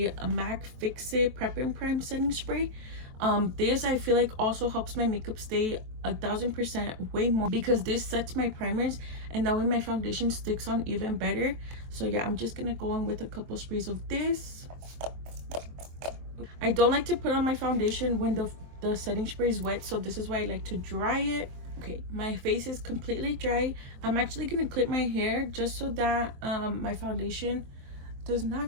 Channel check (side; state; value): left; late; 23 ms